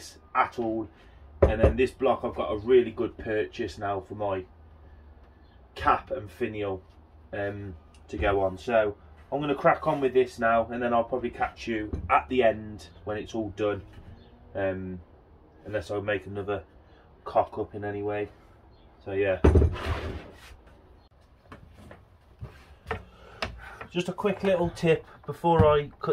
at all. And then this block, I've got a really good purchase now for my cap and finial to go on. So I'm going to crack on with this now, and then I'll probably catch you at the end when it's all done, unless I make another cock up in any way. So yeah. Just a quick little tip before I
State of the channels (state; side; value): identical; both; correlation 1.00